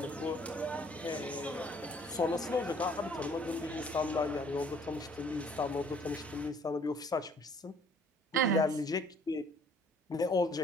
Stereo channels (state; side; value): normal; both; correlation 0.58